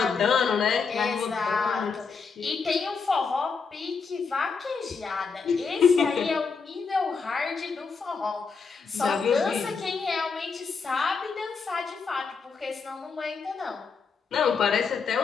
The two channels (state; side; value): quieter; right; 5.2 dB